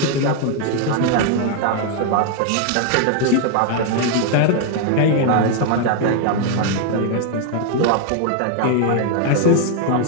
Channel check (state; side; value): different; both; correlation 0.00